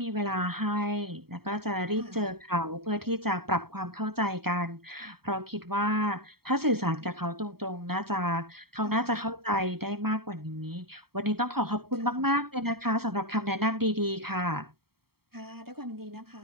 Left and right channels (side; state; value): left; late; 0.95 ms